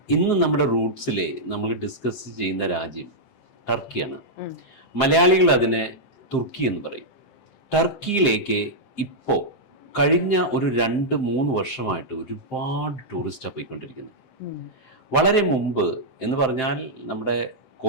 ഇന്ന് നമ്മുടെ റൂട്ട്സിലെ നമ്മൾ ഡിസ്കസ് ചെയ്യുന്ന രാജ്യം ടർക്കിയാണ്. മലയാളികൾ അതിനെ തുർക്കി എന്ന് പറയും. ടർക്കിയിലേക്ക് ഇപ്പോൾ കഴിഞ്ഞ ഒരു 2-3 വർഷമായിട്ട് ഒരുപാട് ടൂറിസ്റ്റാണ് പോയിക്കൊണ്ടിരിക്കുന്നത്. വളരെ മുമ്പ് എന്ന് പറഞ്ഞാൽ നമ്മുടെ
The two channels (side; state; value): right; late; 7.7 ms